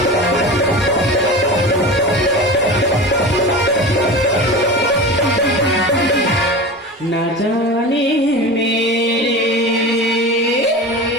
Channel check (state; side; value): normal; both; correlation 0.30